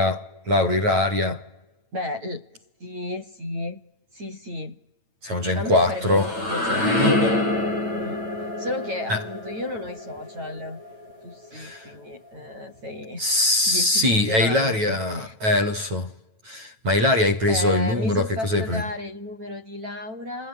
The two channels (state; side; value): late; left; 9.1 ms